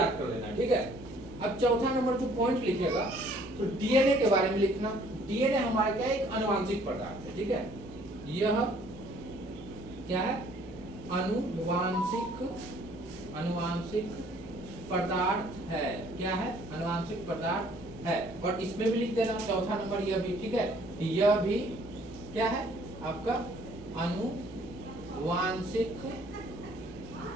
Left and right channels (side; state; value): right; noise; hum, 18 dB below the sound